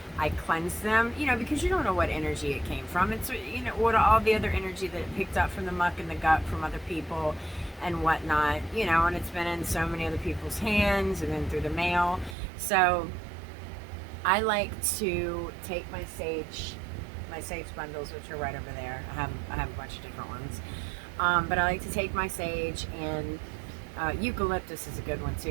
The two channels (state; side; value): drops out; left; at 12.4 s